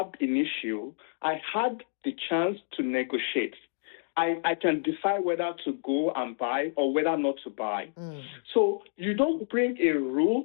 in issue, I had the chance to negotiate. I can decide whether to go and buy or whether not to buy. So you don't bring a rule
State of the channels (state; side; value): silent; right; digital silence